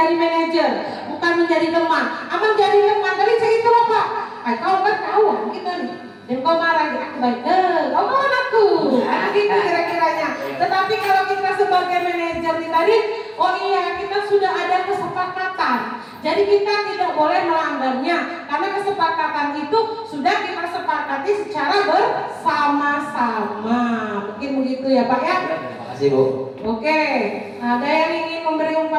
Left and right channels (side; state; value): both; identical; correlation 1.00